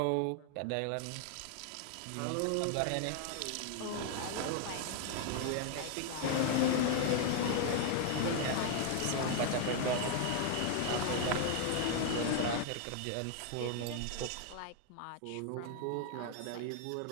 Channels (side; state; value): both; different; correlation 0.00